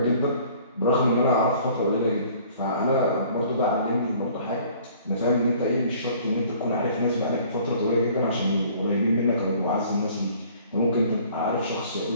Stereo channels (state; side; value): inverted; both; correlation -0.53